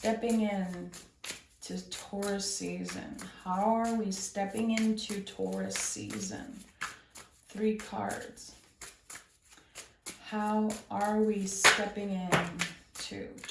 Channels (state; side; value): identical; both; correlation 1.00